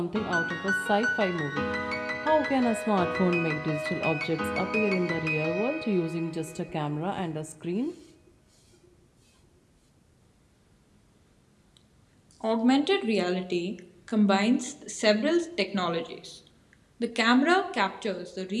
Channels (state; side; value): identical; both; correlation 1.00